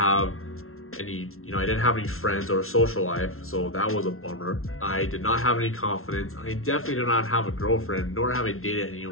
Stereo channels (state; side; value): late; right; 0.62 ms